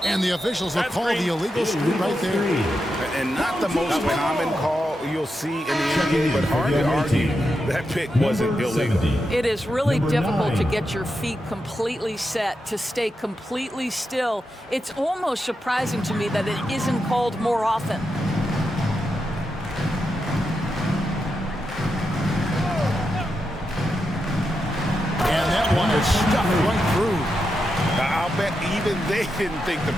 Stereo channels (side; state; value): both; normal; correlation 0.87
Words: And the officials will call the illegal screw right there. And not the most common call you'll see in the NBA, but hard to argue that pick wasn't illegal. It is really difficult to get your feet completely set, to stay completely still. It's almost surprising to me that it isn't called more often. And that one is stuffed right through. I'll bet even they didn't think the